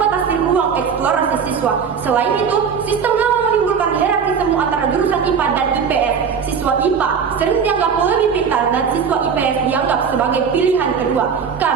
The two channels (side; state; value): left; quieter; 6.5 dB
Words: ruang eksplorasi siswa. Selain itu, sistem lama menimbulkan hierarki semu antara jurusan IPA dan IPS. Siswa IPA sering dianggap lebih pintar dan siswa IPS dianggap sebagai pilihan kedua.